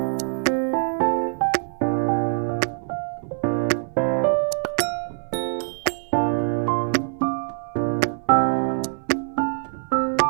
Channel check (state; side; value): silent; left; digital silence